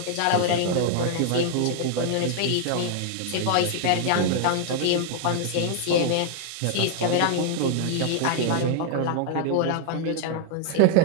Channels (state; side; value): different; both; correlation 0.00